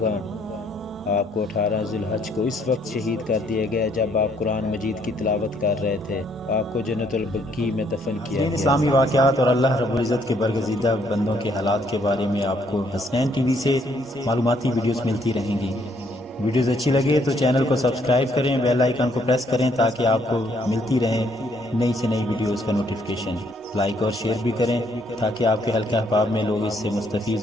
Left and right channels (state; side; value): normal; both; correlation 0.68